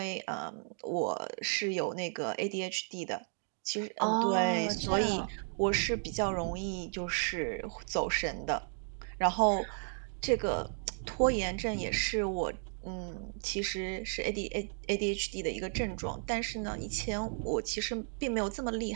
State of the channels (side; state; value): left; silent; 55 dB below the other